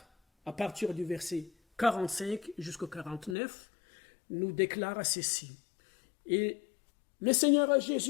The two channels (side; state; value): right; drops out; at 3.4 s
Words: à partir du verset 45 jusqu'au 49, nous déclare ceci. Et le Seigneur